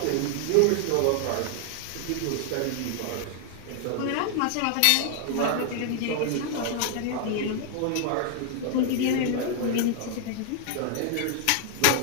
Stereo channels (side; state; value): both; different; correlation 0.00